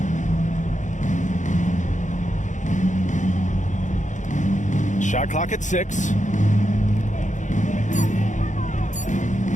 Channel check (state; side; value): late; right; 0.36 ms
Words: Shot clock at 6.